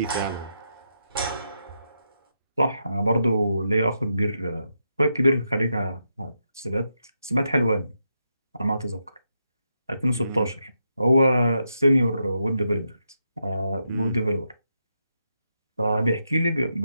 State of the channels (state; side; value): inverted; both; correlation -0.83